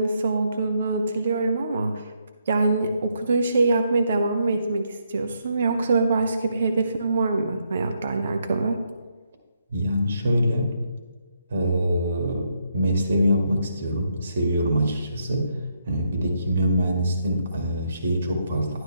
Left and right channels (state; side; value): inverted; both; correlation -0.77